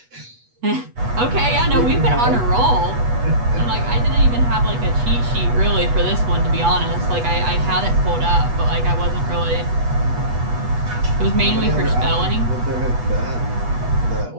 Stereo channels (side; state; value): left; late; 8.2 ms